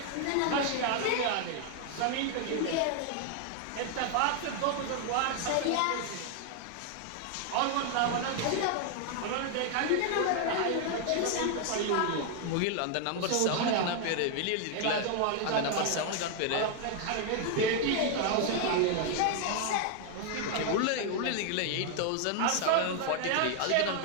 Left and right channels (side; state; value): both; different; correlation 0.00